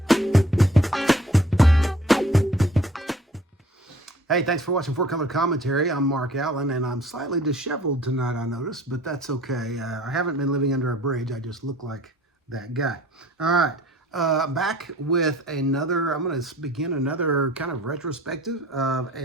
Hey, thanks for watching Four Color Commentary. I'm Mark Allen, and I'm slightly disheveled tonight, I noticed, but that's okay. I haven't been living under a bridge. I just look like that guy. All right, back with another, I'm going to begin another kind of retrospective of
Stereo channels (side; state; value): both; normal; correlation 0.53